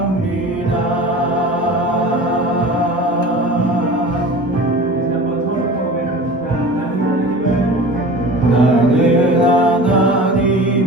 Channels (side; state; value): both; normal; correlation 0.37